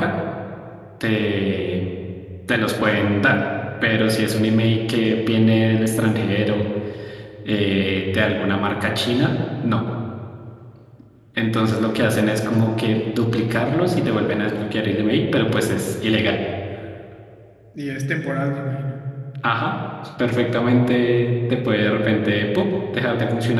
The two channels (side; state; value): both; identical; correlation 1.00